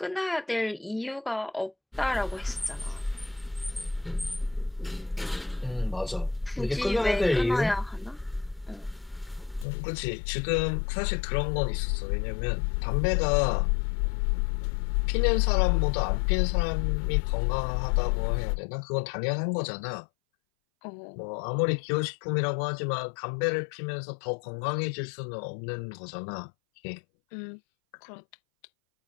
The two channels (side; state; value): right; drops out; at 9.7 s